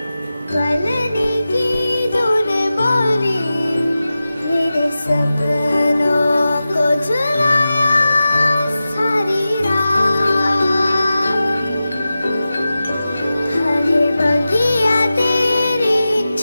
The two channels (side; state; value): both; inverted; correlation -0.94